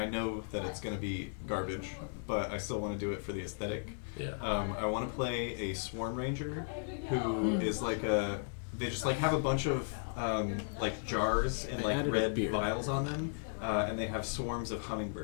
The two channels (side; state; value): right; silent; digital silence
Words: know that it's going to be garbage, but I still want to do it for the aesthetic. Yeah. I want to play a Swarm Ranger who is like a... They just like have a bunch of like jars and like red vials on them, and they have swarms of